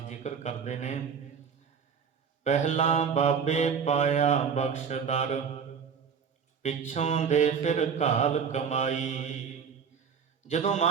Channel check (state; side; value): quieter; left; 6.7 dB